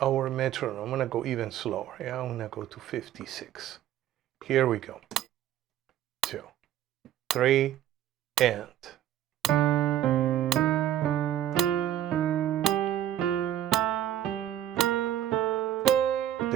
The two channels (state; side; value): quieter; left; 11.9 dB